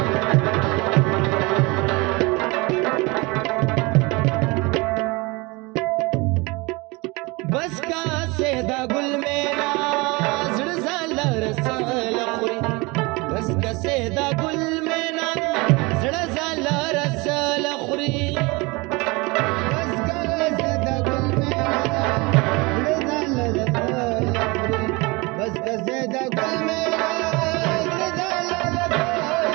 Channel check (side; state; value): left; quieter; 25.5 dB